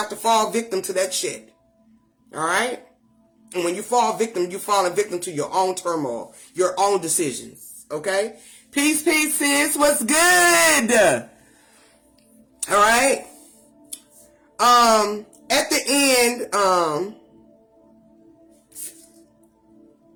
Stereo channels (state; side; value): identical; both; correlation 1.00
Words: to fall victim to that shit. Alright? And when you fall victim, you're falling victim to your own turmoil, your own decisions. Okay? Peace, sis. What's good? Alright? At the end,